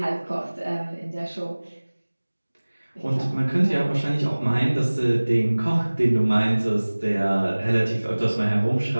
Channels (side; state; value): both; inverted; correlation -1.00